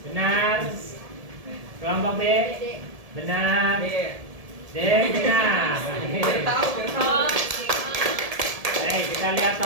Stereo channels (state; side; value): late; left; 1.7 ms